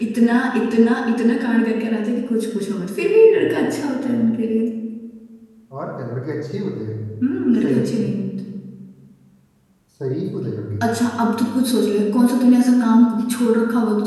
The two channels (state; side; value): identical; both; correlation 1.00